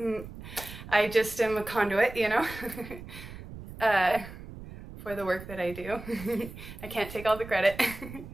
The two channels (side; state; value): right; noise; rumble, 13 dB below the sound